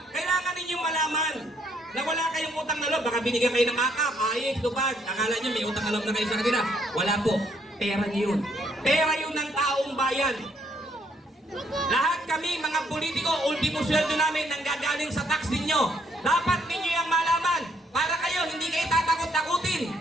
wala kayong utang na loob, baka binigyan kayo ng makap, ayos, tupad. Akala nyo may utang na loob na kayo sa kanila. Wala po. Pera nyo yun. Pera yun ng taong bayan. Lahat kami, mga politiko, ultimo sweldo namin nanggagaling sa tax ninyo. Dapat ninyo yung malaman para kayo hindi kayo tatakot-takutin.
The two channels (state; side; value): normal; both; correlation 0.69